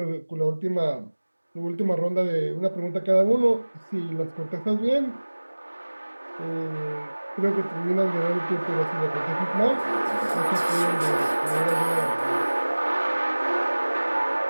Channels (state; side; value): inverted; both; correlation -1.00